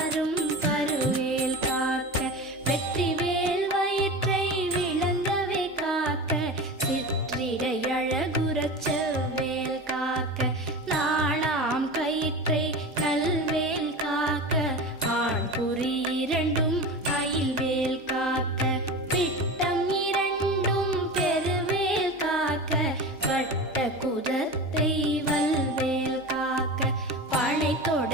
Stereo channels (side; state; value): both; normal; correlation 0.29